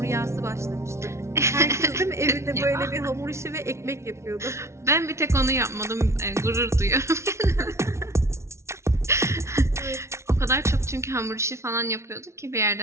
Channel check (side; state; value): left; late; 0.13 ms